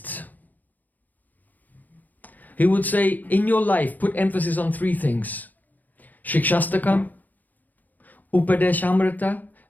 He would say, in your life, put emphasis on three things: Shikshastakam, Upadeshamrita,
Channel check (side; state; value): right; late; 0.083 ms